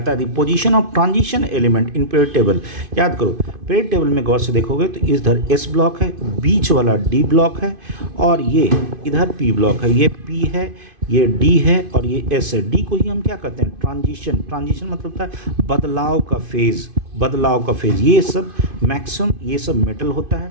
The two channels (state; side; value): late; left; 2.5 ms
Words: है the position of transition element in period table. याद करो, पीरियड टेबल में गौर से देखोगे तो इधर S ब्लॉक है, बीच वाला D ब्लॉक है, और ये इधर P ब्लॉक है, ये P है, ये D है, और ये S है। D को ही हम क्या कहते हैं, ट्रांजिशन। ट्रांजिशन मतलब होता है बदलाव का फेज, बदलाव का फेज। ये सब मैक्सिमम ये सब मेटल होता है,